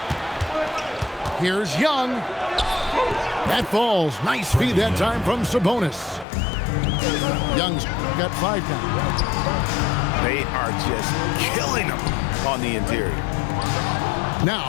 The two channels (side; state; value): right; drops out; at 6.2 s